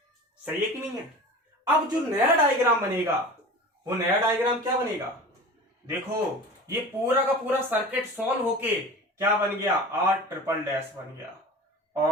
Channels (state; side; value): normal; both; correlation 0.35